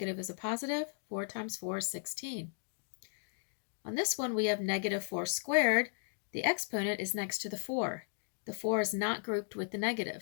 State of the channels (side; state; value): right; silent; digital silence